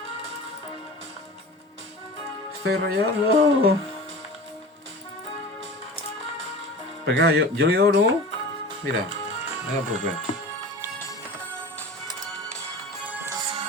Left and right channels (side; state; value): both; normal; correlation 0.35